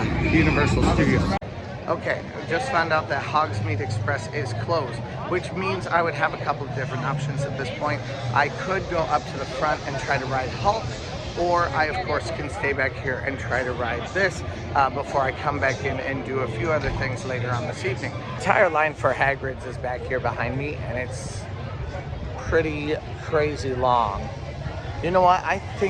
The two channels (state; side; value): identical; both; correlation 1.00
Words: Universal Studios. Okay, I just found out that Hogsmeade Express is closed, which means I would have a couple of different options at this point. I could go up to the front and try to ride Hulk, or I of course can stay back here and try to ride this before I come back in and do a few other things later on this evening. The entire line for Hagrid's is back here behind me, and it's pretty crazy long. You know what? I